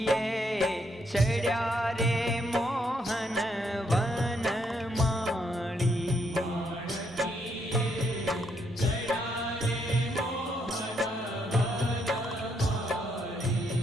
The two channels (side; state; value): both; normal; correlation 0.75